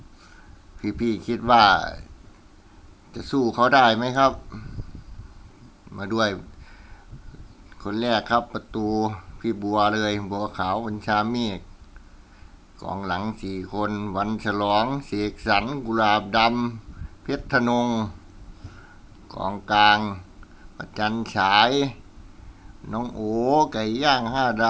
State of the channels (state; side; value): identical; both; correlation 1.00